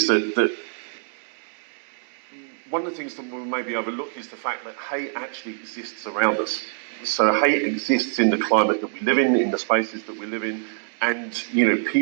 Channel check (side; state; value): left; silent; 57 dB below the other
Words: that one of the things that we maybe overlook is the fact that hate actually exists around us. So hate exists in the climate that we live in the spaces that we live in, and